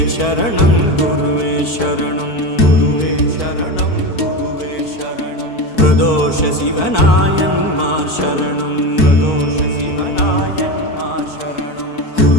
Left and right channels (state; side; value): late; right; 4.5 ms